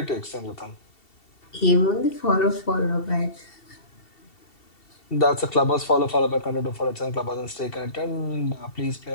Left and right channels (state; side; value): late; right; 2.7 ms